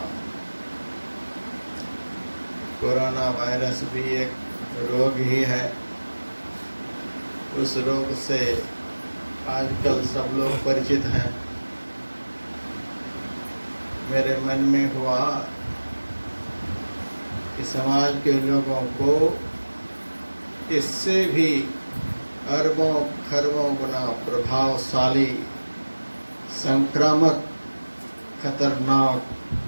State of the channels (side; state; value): both; inverted; correlation -1.00